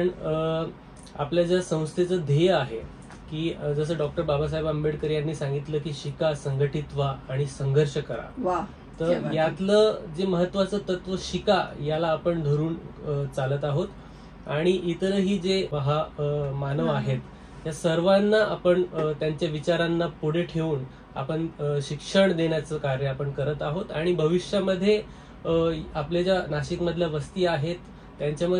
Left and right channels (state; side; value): identical; both; correlation 1.00